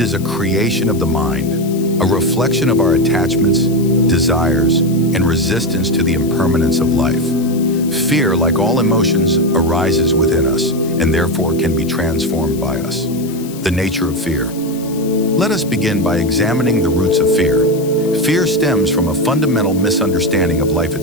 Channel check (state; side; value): noise; left; hiss, 17 dB below the sound